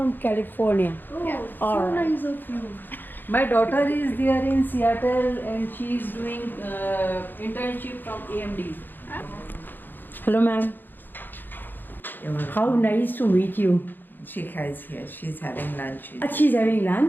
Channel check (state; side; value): late; right; 0.092 ms